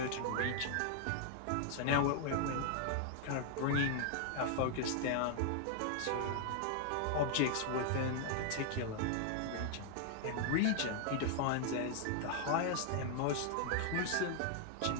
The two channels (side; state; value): both; different; correlation 0.00